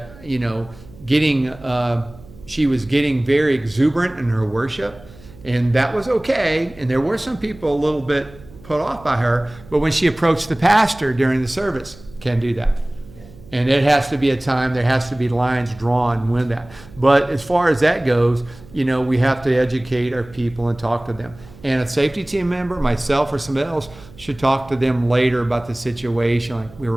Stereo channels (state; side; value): noise; right; hum, 21 dB below the sound